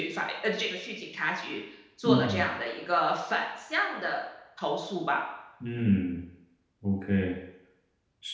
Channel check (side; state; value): both; identical; correlation 1.00